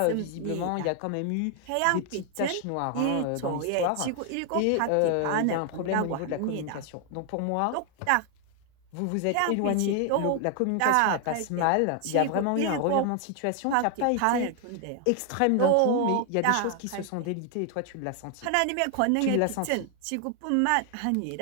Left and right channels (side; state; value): both; different; correlation 0.00